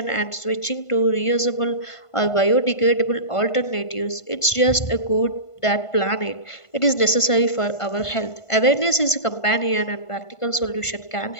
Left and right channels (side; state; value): right; late; 1.5 ms